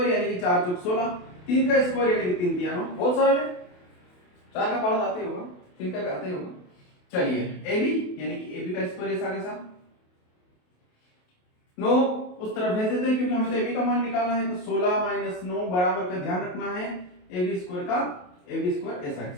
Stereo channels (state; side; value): late; right; 28 ms